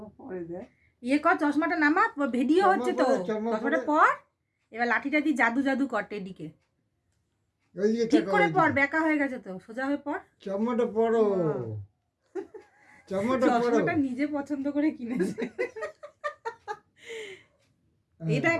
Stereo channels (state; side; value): identical; both; correlation 1.00